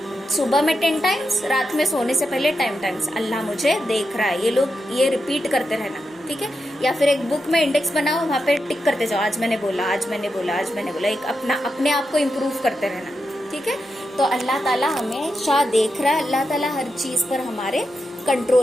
सुबह में 10 टाइम्स, रात में सोने से पहले 10 टाइम्स अल्लाह मुझे देख रहा है, ये लोग ये रिपीट करते रहना, ठीक है। या फिर एक बुक में इंडेक्स बनाओ, वहाँ पे टिक करते जाओ, आज मैंने बोला, आज मैंने बोला, आज मैंने बोला, एक अपने आप को इम्प्रूव करते रहना, ठीक है। तो अल्लाह ताला हमेशा देख रहा है, अल्लाह ताला हर चीज पर हमारे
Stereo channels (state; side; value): normal; both; correlation 0.87